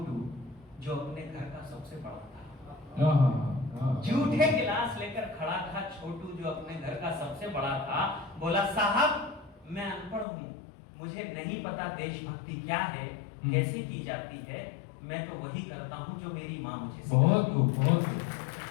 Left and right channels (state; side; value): drops out; right; at 10.2 s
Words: जो अपने घर का सबसे बड़ा था। जूठे गिलास लेकर खड़ा था छोटू, जो अपने घर का सबसे बड़ा था। बोला, साहब मैं अनपढ़ हूँ, मुझे नहीं पता देशभक्ति क्या है, कैसे की जाती है, मैं तो वही करता हूँ जो मेरी माँ मुझे सिखाती है। बहुत खूब, बहुत